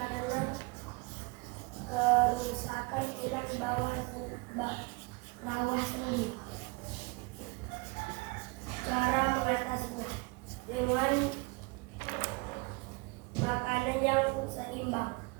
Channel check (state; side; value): quieter; left; 27.8 dB